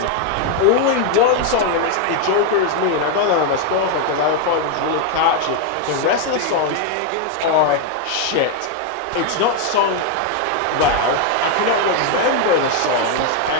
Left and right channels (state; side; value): different; both; correlation 0.01